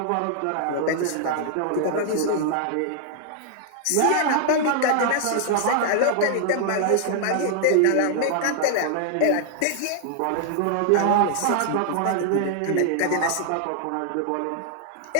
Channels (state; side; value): different; both; correlation 0.00